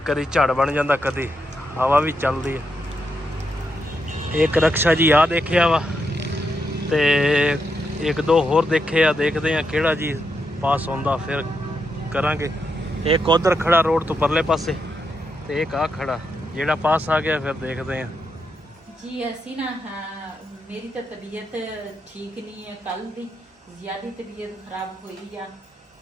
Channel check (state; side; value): normal; both; correlation 0.83